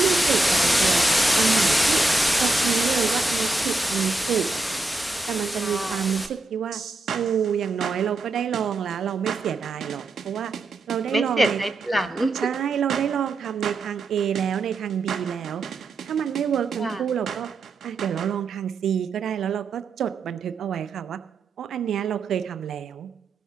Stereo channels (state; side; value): quieter; left; 3.1 dB